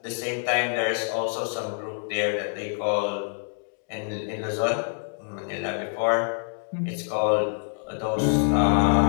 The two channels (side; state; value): right; silent; digital silence